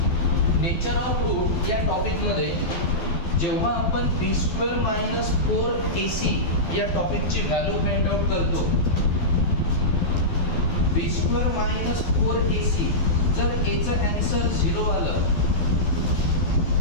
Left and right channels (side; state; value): right; late; 12 ms